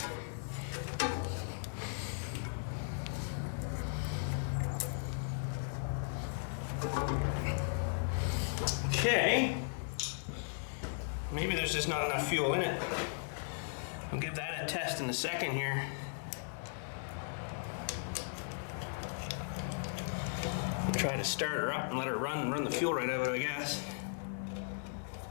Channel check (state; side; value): silent; right; digital silence